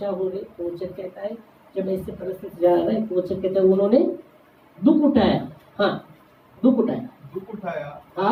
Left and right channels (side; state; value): both; identical; correlation 1.00